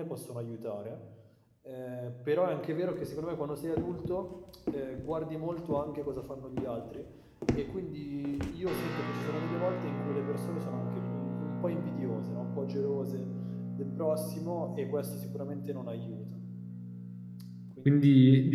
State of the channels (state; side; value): identical; both; correlation 1.00